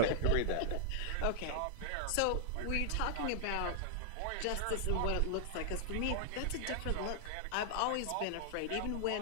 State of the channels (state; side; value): different; both; correlation -0.01